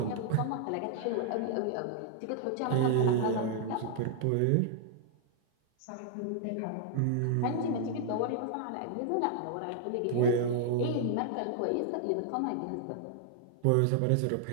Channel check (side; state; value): both; different; correlation -0.01